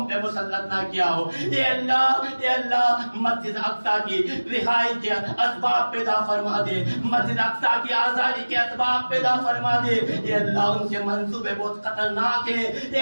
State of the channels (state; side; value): inverted; both; correlation -1.00